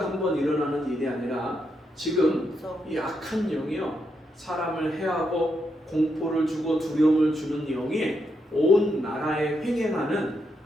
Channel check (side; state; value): both; normal; correlation 0.81